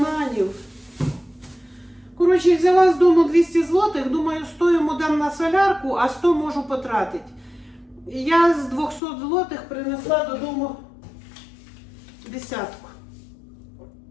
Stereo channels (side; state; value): right; drops out; at 9.0 s